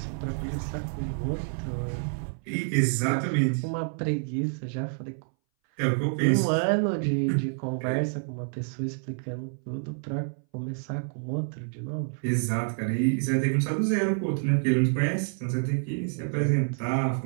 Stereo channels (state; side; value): silent; left; 59 dB below the other